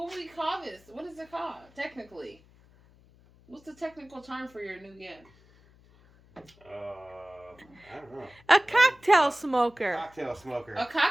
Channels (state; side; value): noise; left; hum, 27 dB below the sound